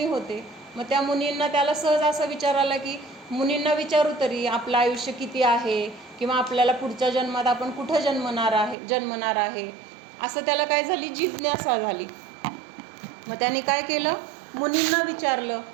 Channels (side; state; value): left; drops out; at 8.8 s